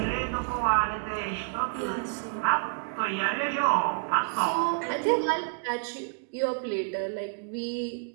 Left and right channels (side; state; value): left; quieter; 38.3 dB